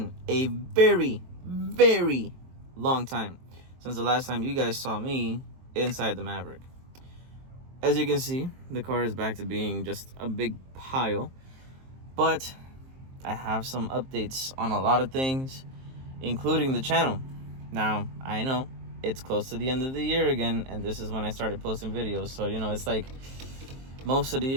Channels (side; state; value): left; late; 23 ms